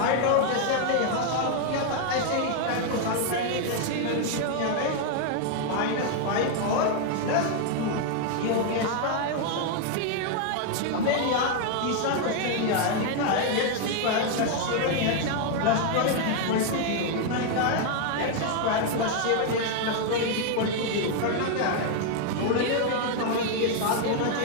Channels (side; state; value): both; different; correlation 0.00